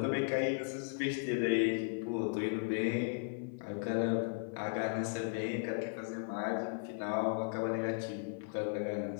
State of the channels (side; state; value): right; silent; 54 dB below the other